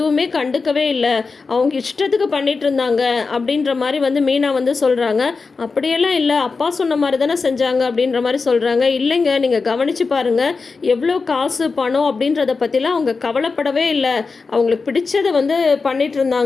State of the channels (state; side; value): quieter; right; 4.5 dB